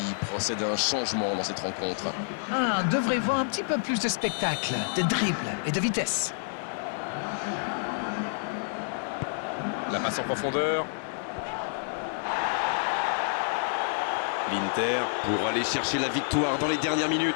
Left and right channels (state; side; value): silent; right; digital silence